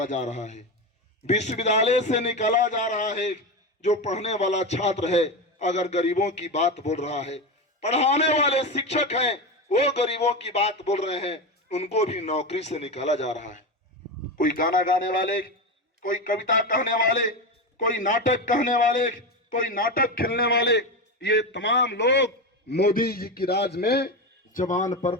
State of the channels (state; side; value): normal; both; correlation 0.17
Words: जा रहा है, विश्वविद्यालय से निकाला जा रहा है। जो पढ़ने वाला छात्र है अगर गरीबों की बात बोल रहा है, पढ़ाने वाले शिक्षक हैं वो गरीबों की बात बोल रहे हैं, उनको भी नौकरी से निकाला जा रहा है। कोई गाना गाने वाले, कोई कविता कहने वाले, कोई नाटक कहने वाले, कोई नाटक खेलने वाले, ये तमाम लोग मोदी जी की राज में जबान पर